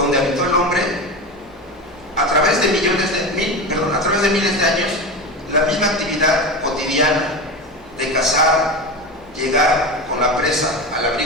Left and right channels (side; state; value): both; normal; correlation 0.24